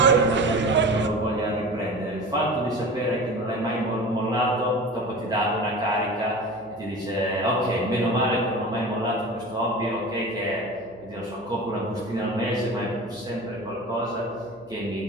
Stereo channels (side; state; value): right; noise; hum, 27 dB below the sound